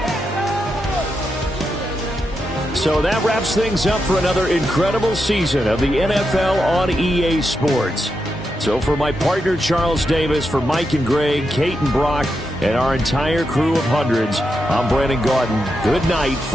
So that wraps things up for another incredible season of the NFL on EA Sports. So for my partner Charles Davis, for Mike and Greg, Kate and Brock, and our entire crew of hundreds, I'm Brandon Gaudin. Good night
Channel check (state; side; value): normal; both; correlation 0.85